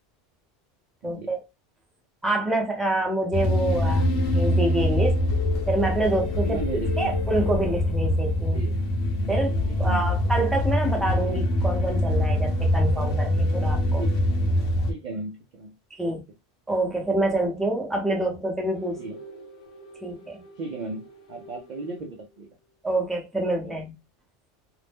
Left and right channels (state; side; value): normal; both; correlation 0.69